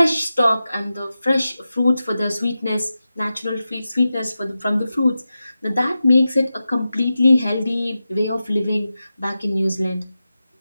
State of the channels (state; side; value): inverted; both; correlation -0.93